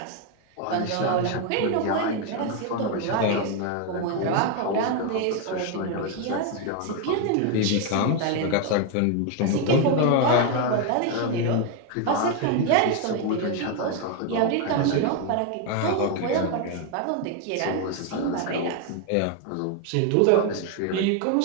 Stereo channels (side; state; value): both; different; correlation 0.01